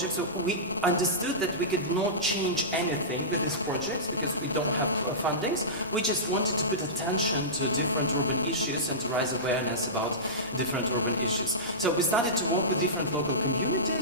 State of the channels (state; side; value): normal; both; correlation -0.19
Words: So we understood that we could not change anything with these projects because we don't have fundings. We just wanted to put attention to different urban issues and to raise awareness about different urban issues. So we started to work with different local